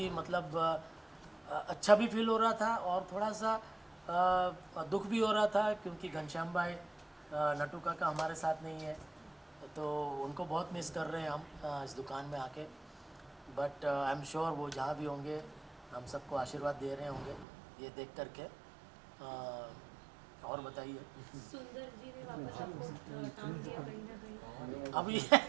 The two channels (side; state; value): left; drops out; at 17.4 s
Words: मतलब अच्छा भी फील हो रहा था और थोड़ा सा दुख भी हो रहा था, क्योंकि घनश्याम भाई नटू काका हमारे साथ नहीं है, तो उनको बहुत मिस कर रहे हैं हम इस दुकान में आके। बट आई एम श्योर वो जहाँ भी होंगे हम सबको आशीर्वाद दे रहे होंगे ये देख करके। और बताइए। सुंदर जी ने वापस आपको टांग दिया कहीं ना कहीं? अभी